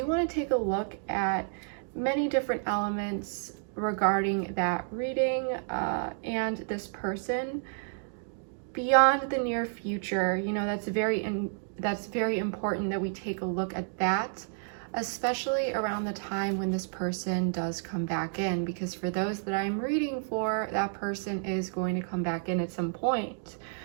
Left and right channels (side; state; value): left; silent; digital silence